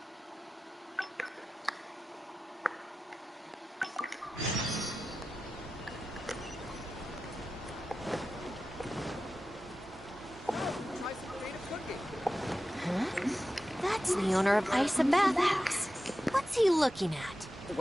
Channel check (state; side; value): normal; both; correlation 0.93